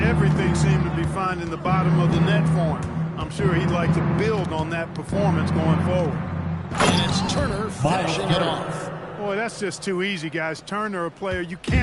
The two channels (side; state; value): both; identical; correlation 1.00